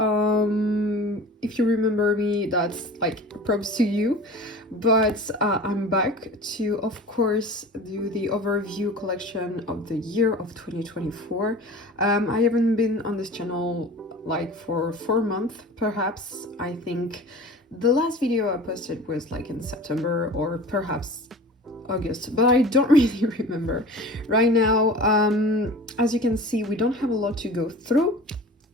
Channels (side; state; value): both; normal; correlation 0.39